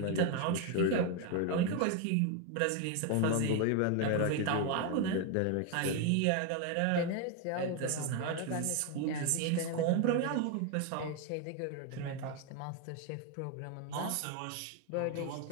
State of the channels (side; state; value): both; different; correlation 0.01